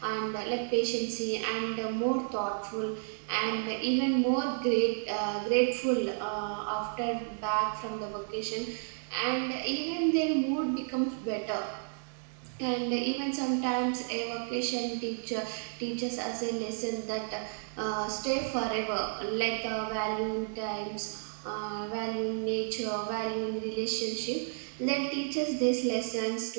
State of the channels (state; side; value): silent; left; digital silence